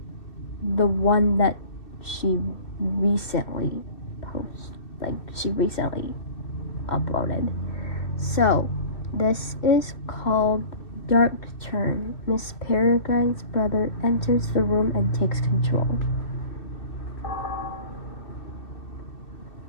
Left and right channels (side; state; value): right; late; 2.6 ms